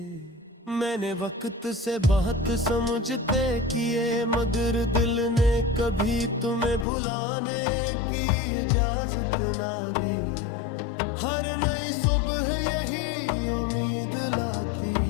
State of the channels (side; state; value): right; drops out; at 6.9 s